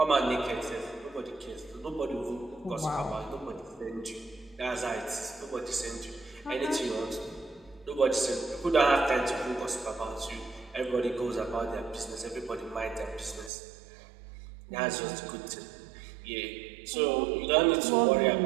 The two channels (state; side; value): drops out; left; at 13.5 s